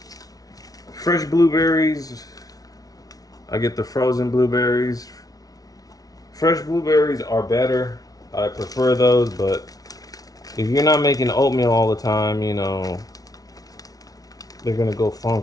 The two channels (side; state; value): right; late; 0.18 ms